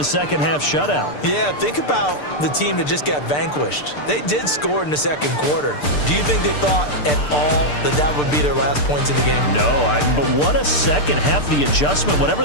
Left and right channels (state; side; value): late; right; 6.8 ms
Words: second half shutout. Yeah, think about the team that just got vanquished. They did score in the 2nd quarter. Do you think they thought at all that that would be their last points of the game? No, but what a second half. The adjustment, whatever